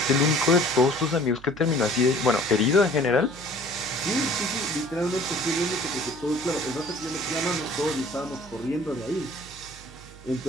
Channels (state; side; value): noise; right; hum, 20 dB below the sound